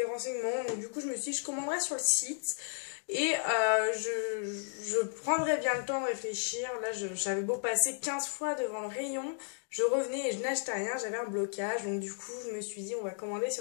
renseignements, donc du coup je me suis dit je commanderai sur le site et je prendrai bien le temps de réfléchir. Là j'avais beau passer 15 fois devant le rayon, je revenais et je n'achetais rien, j'avais un blocage, donc du coup je me suis dit on va commander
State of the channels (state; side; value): silent; right; digital silence